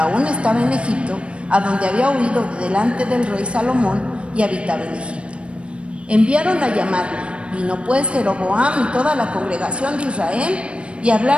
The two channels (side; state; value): left; late; 0.059 ms